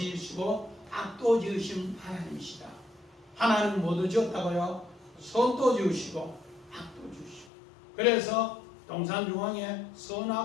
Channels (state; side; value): drops out; right; at 7.5 s